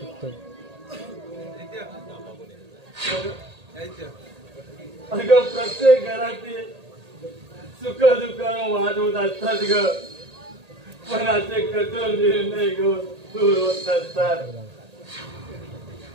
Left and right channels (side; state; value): left; late; 1.8 ms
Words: अगं प्रत्येक घरातील सुख दुःखानं वाद होत असतात ग. पण असे कठोर निर्णय घेऊन दूर होत नसतात.